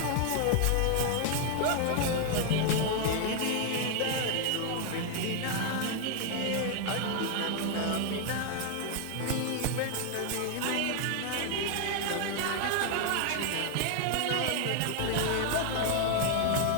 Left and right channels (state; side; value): different; both; correlation 0.00